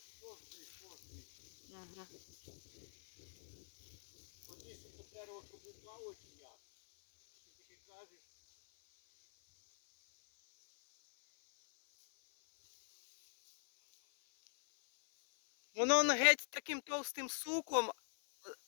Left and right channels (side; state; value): right; silent; 50 dB below the other